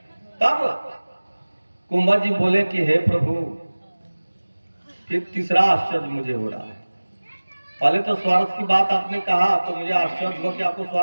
तब कुंभज जी बोले कि हे प्रभु, फिर तीसरा आश्चर्य मुझे हो रहा है। पहले तो स्वार्थ की बात आपने कहा तो मुझे आश्चर्य हुआ कि आपको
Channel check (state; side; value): inverted; both; correlation -1.00